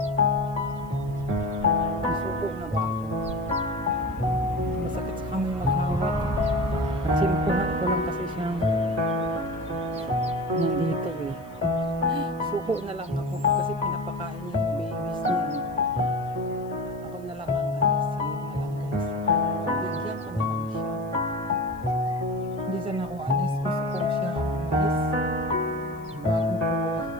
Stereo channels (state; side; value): noise; left; hiss, 29 dB below the sound